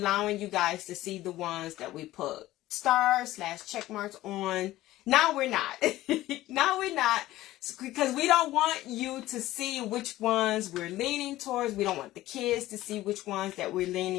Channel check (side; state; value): right; quieter; 15.9 dB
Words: you guys to see the ones that we put stars / check marks on. Now we're not. Now we're not. Because we don't want you to see which ones we're leaning towards. We don't want the kids to see which ones that we're